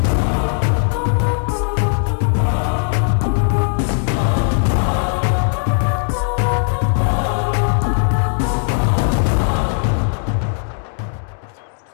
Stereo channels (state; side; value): silent; right; digital silence